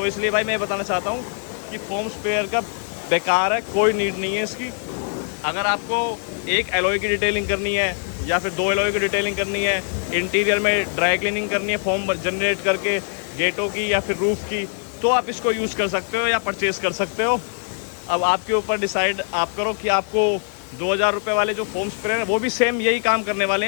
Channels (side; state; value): right; silent; 64 dB below the other